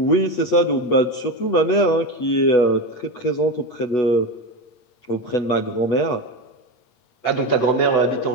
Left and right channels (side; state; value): right; late; 8.7 ms